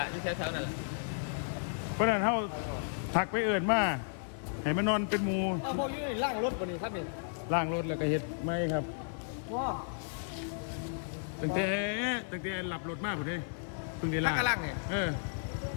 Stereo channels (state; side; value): silent; right; 55 dB below the other